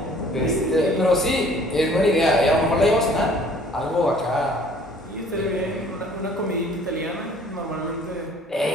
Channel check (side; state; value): both; normal; correlation 0.55